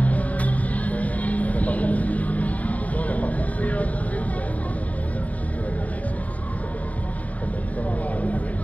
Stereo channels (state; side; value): late; right; 0.071 ms